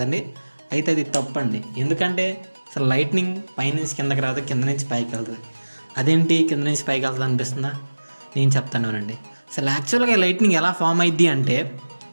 అయితే అది తప్పండి. ఎందుకంటే అసలు లైట్నింగ్ పైన నుంచి కిందకి రాదు, కింద నుంచి పైకి వెళ్తుంది. అదేంటి కింద నుంచి పైకి వెళ్తుంది అనిపిస్తుందా? నేను చెప్తాను. అసలు యాక్చువల్గా లైట్నింగ్ ఎలా ఫామ్ అయ్యిద్ది అంటే,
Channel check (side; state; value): both; inverted; correlation -1.00